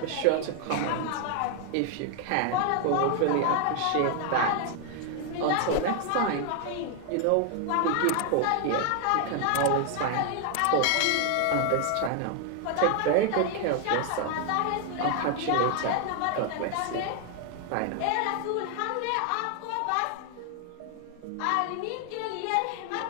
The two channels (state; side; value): different; both; correlation 0.00